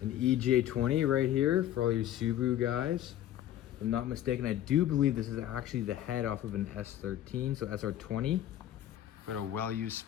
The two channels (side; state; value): right; quieter; 12.2 dB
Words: EJ20 right here for all you Subaru guys. If I'm not mistaken, I do believe this is actually the head off of an S13, so SR20. Got a well-used